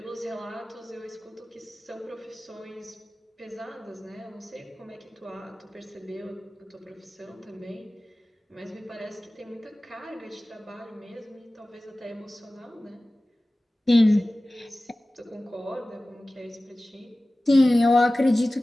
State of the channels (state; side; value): normal; both; correlation 0.97